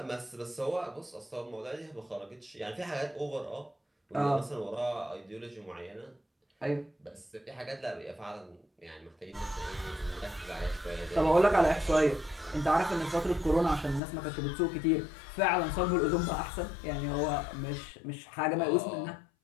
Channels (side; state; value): right; drops out; at 14.0 s